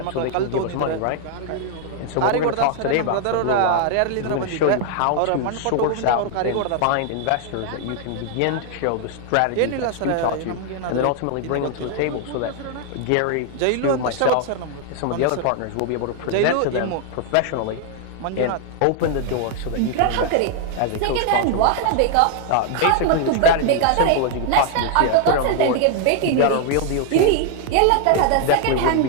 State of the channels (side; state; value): both; different; correlation 0.00